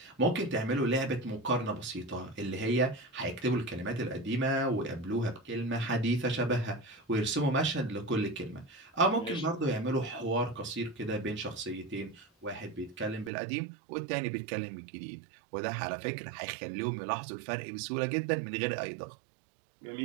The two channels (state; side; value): drops out; left; at 13.3 s